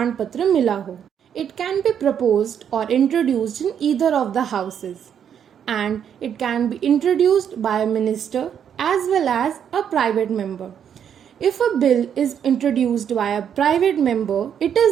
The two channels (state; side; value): quieter; left; 8.5 dB